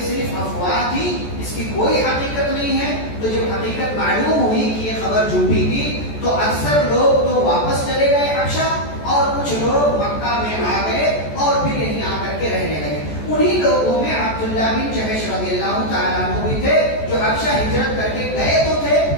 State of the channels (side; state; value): right; late; 14 ms